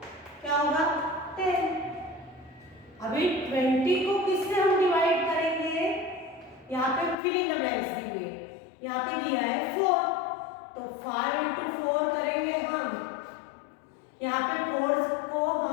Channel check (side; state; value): right; drops out; at 7.2 s